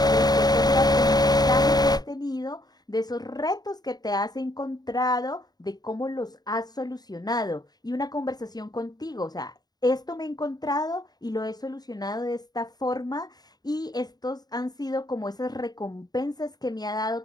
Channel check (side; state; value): right; late; 0.19 ms